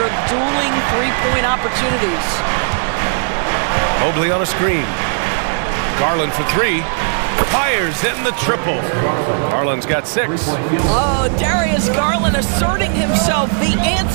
of dueling three-point opportunities. Mobley on a screen. Garland for 3. Fires in the triple. Garland's got 6. Oh, Darius Garland asserting himself, the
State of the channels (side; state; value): left; silent; digital silence